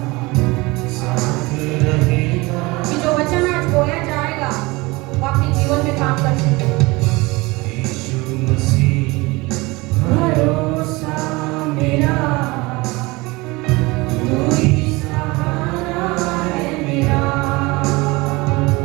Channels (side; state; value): left; quieter; 23.3 dB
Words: कि जो वचन आज बोया जाएगा वो अपने जीवन में काम कर सके। यीशु मसीह भरोसा मेरा, तू ही सहारा है मेरा।